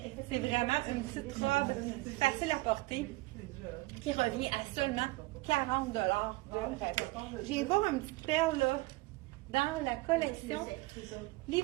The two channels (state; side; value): quieter; left; 22.0 dB